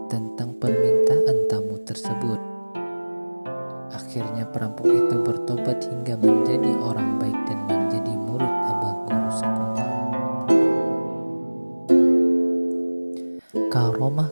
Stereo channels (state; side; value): inverted; both; correlation -1.00